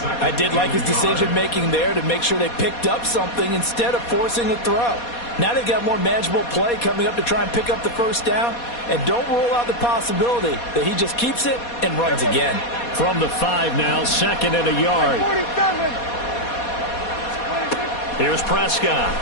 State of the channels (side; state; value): right; late; 4.2 ms